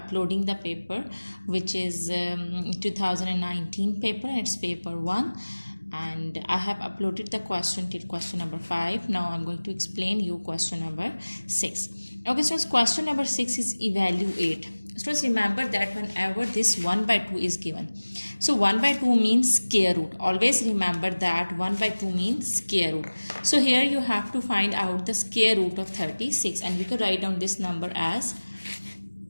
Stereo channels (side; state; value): both; inverted; correlation -1.00